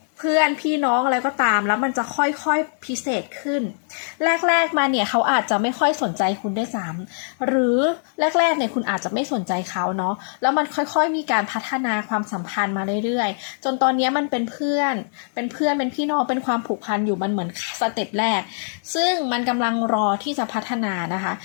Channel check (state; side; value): silent; right; 64 dB below the other